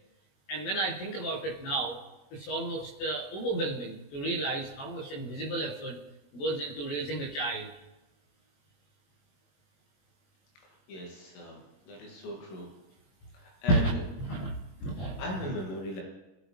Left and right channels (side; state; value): right; late; 21 ms